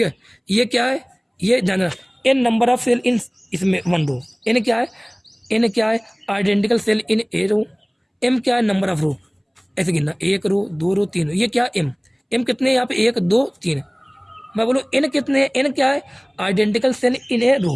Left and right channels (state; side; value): identical; both; correlation 1.00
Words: है, ये क्या है, ये ध्यान देना, एन नंबर ऑफ सेल इन इसमें वन रो, एन क्या है, एन क्या है आइडेंटिकल सेल इन ए रो, एम क्या है नंबर ऑफ रो, ऐसे गिनना, एक रो, 2 रो, 3 रो, ये क्या एम, एम कितने यहाँ पे 1 2 3, मैं बोलूँ एन कितने, एन क्या है आइडेंटिकल सेल इन ए रो,